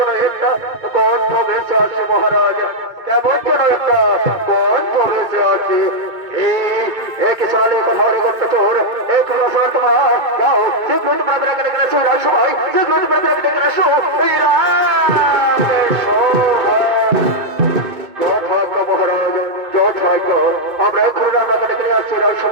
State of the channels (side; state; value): left; late; 2.2 ms